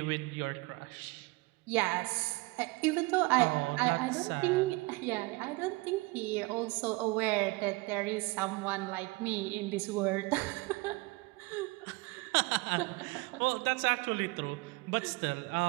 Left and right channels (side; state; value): left; quieter; 24.5 dB